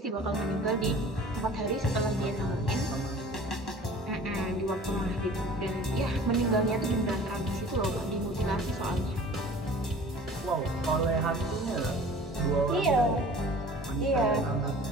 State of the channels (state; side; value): normal; both; correlation 0.45